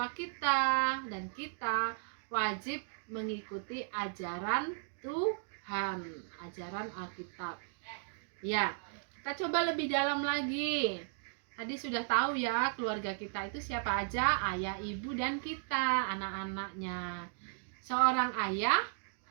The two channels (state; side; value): silent; left; digital silence